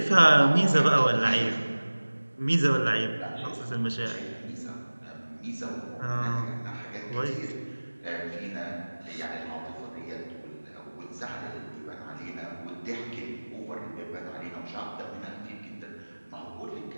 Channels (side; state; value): both; inverted; correlation -1.00